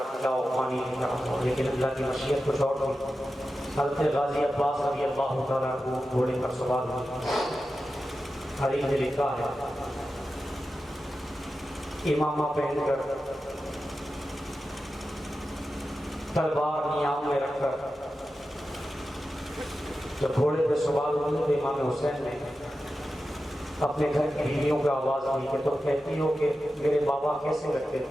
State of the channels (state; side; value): normal; both; correlation 0.92